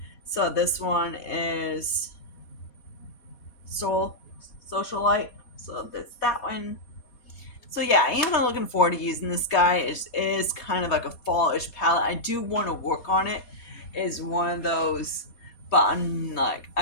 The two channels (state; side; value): late; right; 4.2 ms